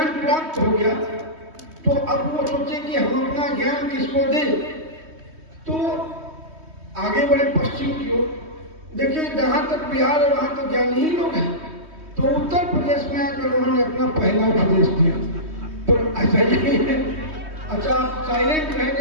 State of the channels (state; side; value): late; left; 3.2 ms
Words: प्राप्त हो गया तो अब वो सोचे कि हम अपना ज्ञान किसको दें, तो आगे बढ़े पश्चिम की ओर। देखिए, जहां तक बिहार है वहां तो ज्ञानी ही लोग हैं, तो उत्तर प्रदेश में आकर उन्होंने अपना पहला उपदेश दिया। तो ऐसा ही है। अच्छा, आप साइलेंट